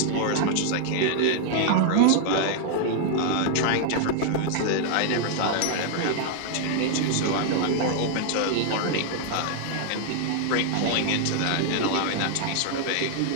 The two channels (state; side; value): different; both; correlation 0.00